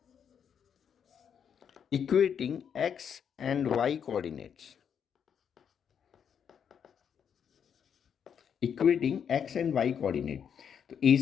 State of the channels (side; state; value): right; quieter; 7.8 dB